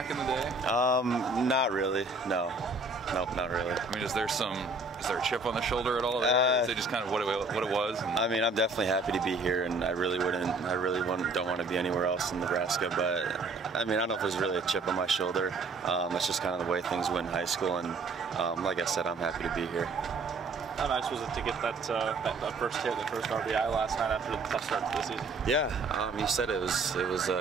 in the day? Not really, no. Nope, not really. I mean, is there a chip on the shoulder at all? Is it just kind of what it was? I mean, I'm definitely happy to be here, and I really don't want to be anywhere else in Nebraska. But I mean, I don't know if there's really a chip on my shoulder. It's just kind of the way things went in high school, and like I said, I'm happy to be here. How nice was it to get that first hit, the first RBI last night after the tough start to the season? Yeah, you said it was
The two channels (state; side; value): quieter; left; 3.6 dB